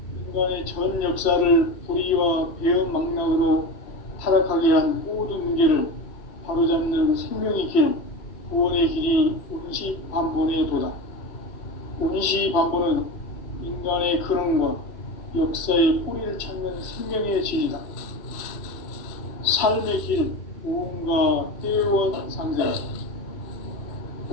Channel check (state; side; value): late; right; 3.1 ms